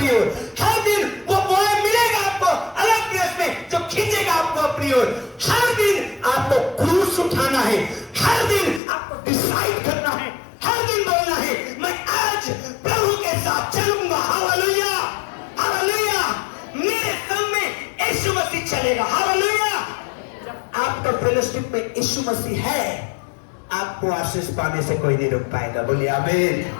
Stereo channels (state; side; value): drops out; right; at 8.8 s